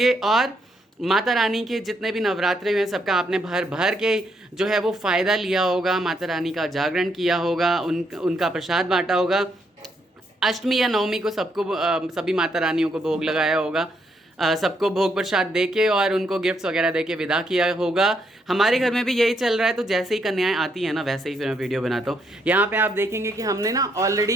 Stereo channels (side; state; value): both; normal; correlation 0.75